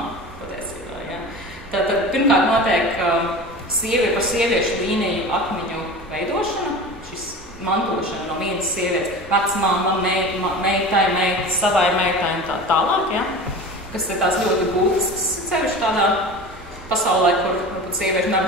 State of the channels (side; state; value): both; normal; correlation 0.34